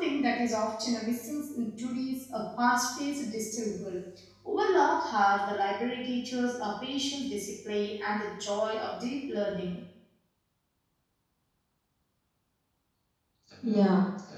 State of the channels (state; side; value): identical; both; correlation 1.00